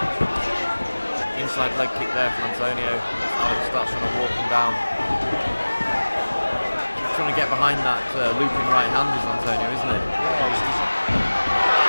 Inside leg kick there from Antonio. Alex starts trying to walk him down. Trying to get behind that looping right hand is Antonio, isn't he?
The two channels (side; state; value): both; inverted; correlation -1.00